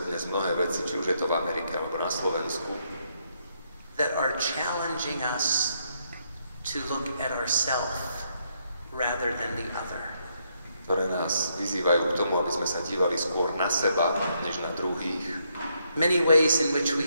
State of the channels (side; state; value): both; inverted; correlation -0.75